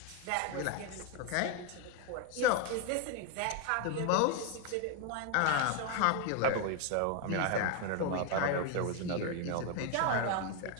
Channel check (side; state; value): both; different; correlation 0.01